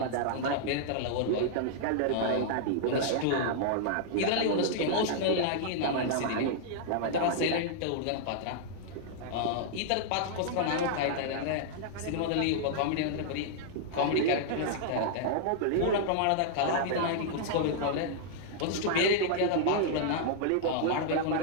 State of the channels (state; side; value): different; both; correlation -0.01